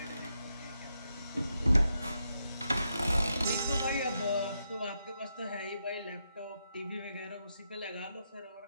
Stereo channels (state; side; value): inverted; both; correlation -0.83